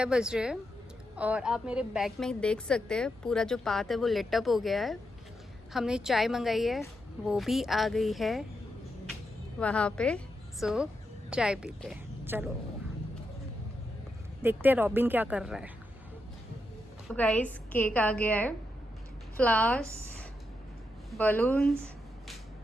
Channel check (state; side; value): normal; both; correlation 0.84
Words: बज रहे हैं और आप मेरे बैग में देख सकते हैं पूरा जो पाथ है वो लिट अप हो गया है। हमने चाय मंगाई है, वो भी आ गई है वहाँ पे। सो चाय पीते हैं, चलो देखते हैं रॉबिन क्या कर रहा है। तो गाइस केक आ गया है, फ्लावर्स, बलून्स